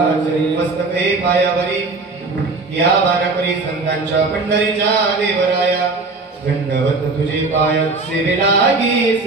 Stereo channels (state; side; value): quieter; left; 3.6 dB